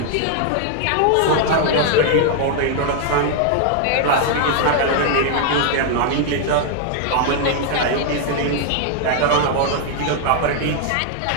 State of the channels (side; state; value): both; different; correlation 0.00